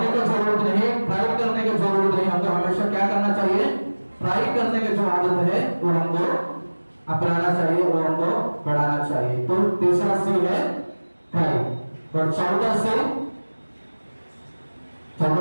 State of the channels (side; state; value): both; inverted; correlation -1.00